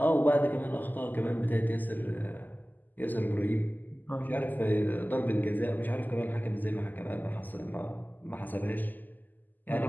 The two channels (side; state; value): right; late; 0.086 ms